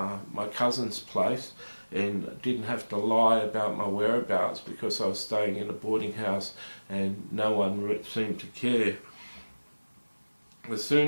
my cousin's place and didn't have to lie about my whereabouts because I was staying in a boarding house and no one seemed to care. I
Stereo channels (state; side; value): inverted; both; correlation -1.00